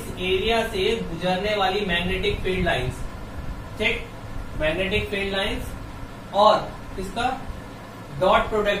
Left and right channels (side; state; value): both; identical; correlation 1.00